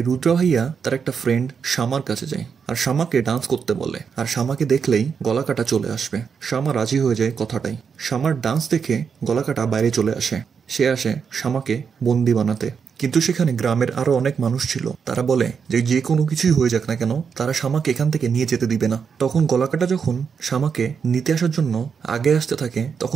রুদ্র ভাইয়া তার একটা ফ্রেন্ড শামার কাছে যায় আর শামাকে ডান্স করতে বলে। আর শামাকে দেখলেই গলাকাটা চলে আসবে। শামা রাজি হয়ে যায় কথাটাই। শামার ডান্স দেখে গলাকাটা বাইরে চলে আসে। সে আসে শামাকে বন্দি বানাতে। কিন্তু সেখানে গ্রামের আরো অনেক মানুষ ছিল। তারা বলে যে যে কোনো কিছুই হয়ে যাক না কেন তারা শামাকে এখান থেকে নিয়ে যেতে দিবে না। তখন গলাকাটা যখন শামাকে নিতে আসার জন্য আগে আসতে থাকে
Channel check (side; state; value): left; quieter; 6.3 dB